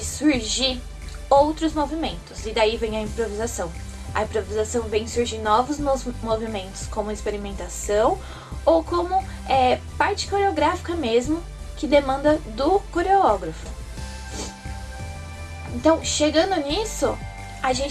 surgir outros movimentos, e daí vem a improvisação. A improvisação vem surgir novos movimentos, como experimentação ou como parte coreográfica mesmo, que demanda do coreógrafo. Então, chegando nisso, a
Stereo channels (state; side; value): identical; both; correlation 1.00